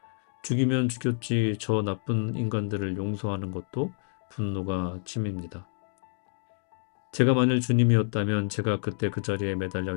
죽이면 죽였지 저 나쁜 인간들을 용서하는 것도 분노가 치밉니다. 제가 만일 주님이었다면 제가 그때 그 자리에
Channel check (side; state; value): right; silent; digital silence